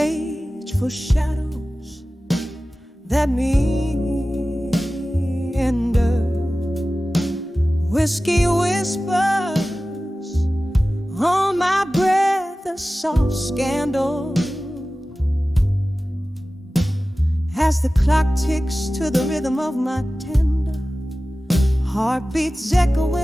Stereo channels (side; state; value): both; normal; correlation 0.96